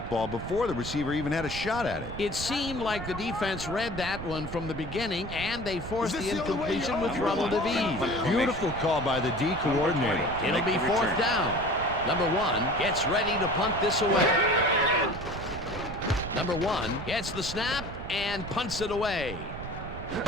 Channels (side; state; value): right; noise; rumble, 9 dB below the sound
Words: before the receiver even had a shot at it. It seemed like the defense read that one from the beginning, and they forced the incompletion with Rebel DeVee. Beautiful call by the D coordinator. It'll be 4th down. Number 1 gets ready to punt this away. number 1 gets the snap and punts it away.